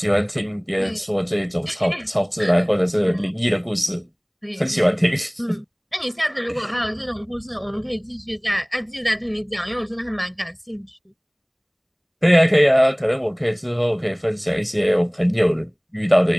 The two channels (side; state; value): both; identical; correlation 1.00